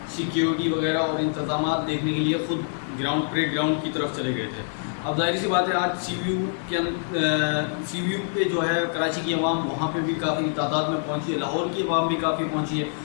سیکیورٹی وغیرہ اور انتظامات دیکھنے کے لیے خود بریک گراؤنڈ کی طرف چلے گئے تھے۔ اب ظاہر سی بات ہے آج سی وی یو پہ جو ہے کراچی کی عوام وہاں پہ بھی کافی تعداد میں پہنچی ہے، لاہور کی عوام بھی کافی پہنچی ہے،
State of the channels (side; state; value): right; silent; 61 dB below the other